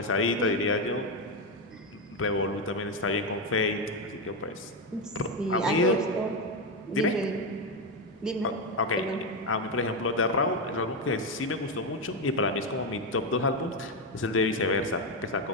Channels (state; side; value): normal; both; correlation 0.09